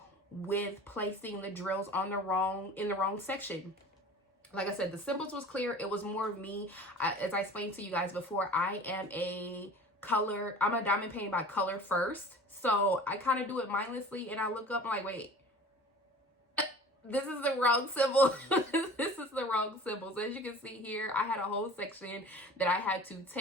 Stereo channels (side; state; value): both; normal; correlation 0.42